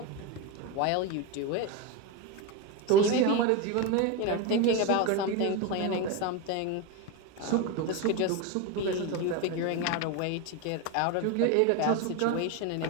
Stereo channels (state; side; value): different; both; correlation 0.04